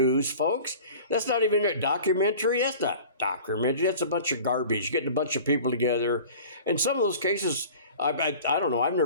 folks. That's not even a documentary. That's not documentary. That's a bunch of garbage, getting a bunch of people together. In some of those cases, I don't know. I've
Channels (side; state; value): both; inverted; correlation -0.42